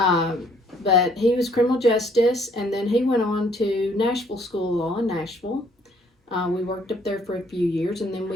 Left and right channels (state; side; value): normal; both; correlation 0.63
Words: he was criminal justice, and then he went on to Nashville School of Law in Nashville. We worked up there for a few years, and then